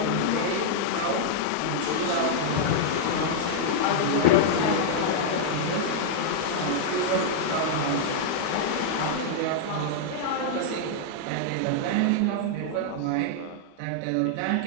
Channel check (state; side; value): different; both; correlation -0.01